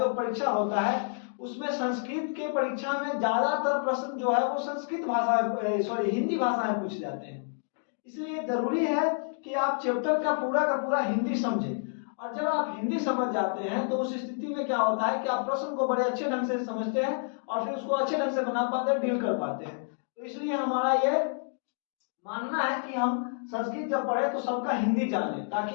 परीक्षा होता है, उसमें संस्कृत के परीक्षा में ज्यादातर प्रश्न जो है वो संस्कृत भाषा हिंदी भाषा में पूछे जाते हैं। इसलिए जरूरी है कि आप चैप्टर का पूरा हिंदी समझें। और जब आप हिंदी समझ जाते हैं तो उस स्थिति में क्या होता है कि आप प्रश्न को बड़े अच्छे ढंग से समझते हैं और फिर उसको अच्छे ढंग से बना पाते हैं, डील कर पाते हैं। तो इसलिए हमारा ये मानना है कि हम संस्कृत जब पढ़े तो सबका हिंदी जाने, ताकि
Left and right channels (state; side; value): silent; right; digital silence